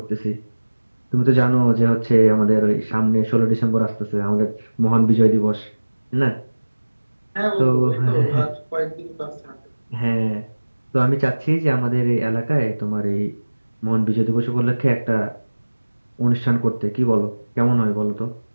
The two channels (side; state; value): both; inverted; correlation -1.00